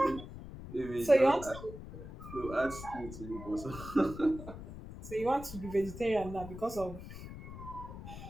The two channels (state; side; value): noise; left; rumble, 12 dB below the sound